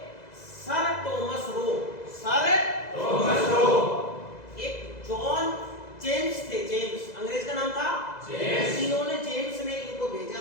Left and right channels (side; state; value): right; late; 2.0 ms